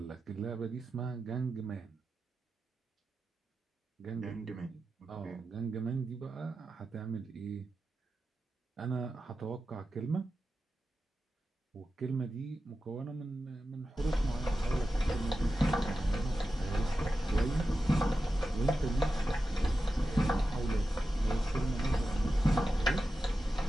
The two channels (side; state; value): both; normal; correlation 0.92